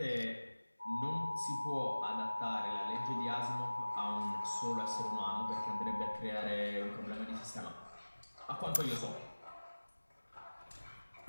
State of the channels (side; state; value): both; inverted; correlation -1.00